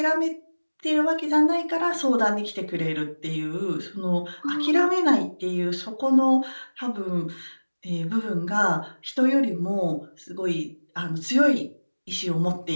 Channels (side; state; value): both; inverted; correlation -1.00